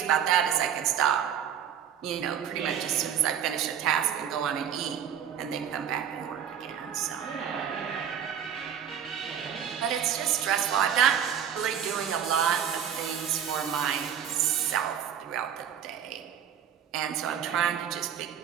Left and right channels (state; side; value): quieter; left; 8.9 dB